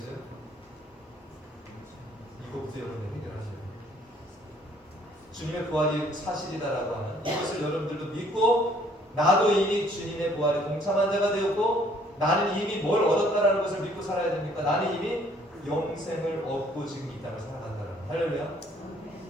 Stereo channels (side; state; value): both; normal; correlation 0.61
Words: 이거부터 여러분들 해결하셔야 돼요. 주님의 부활이 사실이다라고 하는 이것을 여러분들도 믿고, 나도 이미 주님의 부활에 동참한 자가 되었고, 나는 이미 뭘 얻었다라는 것을 믿고 살아야 됩니까? 나는 이미 영생을 얻고 지금 이 땅을 살아간다라는 거예요. 할렐루야.